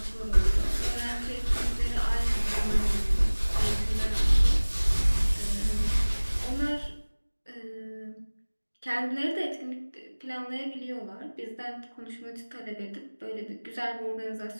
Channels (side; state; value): both; inverted; correlation -1.00